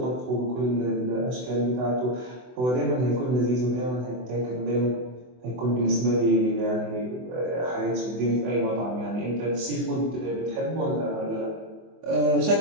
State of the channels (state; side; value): late; left; 24 ms